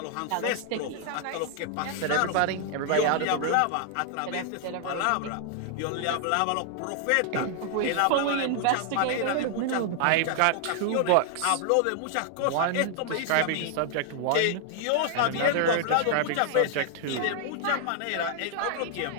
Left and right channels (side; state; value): both; different; correlation 0.00